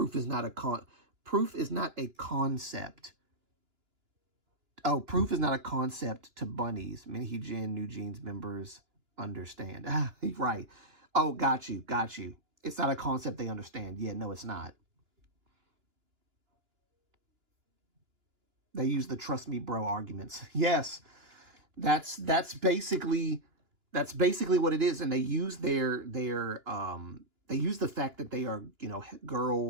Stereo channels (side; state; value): left; late; 2.9 ms